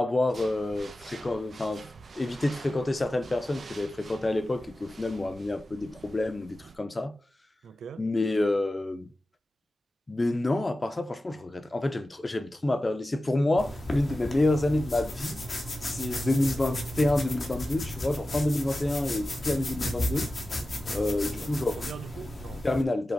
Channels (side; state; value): both; normal; correlation 0.95